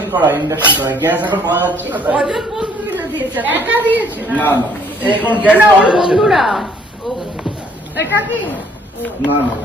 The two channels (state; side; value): normal; both; correlation 0.62